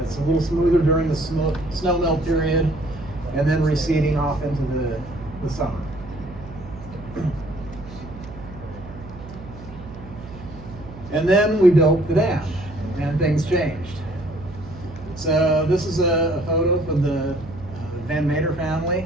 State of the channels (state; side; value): noise; right; hum, 15 dB below the sound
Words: It's a little smoother during the snow melt period, and then receding off into the summer. And then we built the dam, and things changed. So this is a photo from the Van Mater